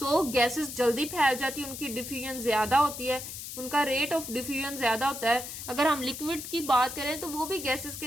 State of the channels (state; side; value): noise; left; hiss, 9 dB below the sound